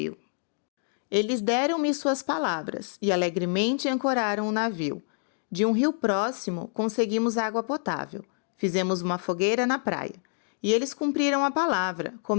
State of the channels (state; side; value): silent; right; 60 dB below the other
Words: Eles deram-me suas palavras e alegremente ancoraram o navio. De um rio próximo, conseguimos água potável. Fizemos uma fogueira na praia. E eles cumpriram a palavra,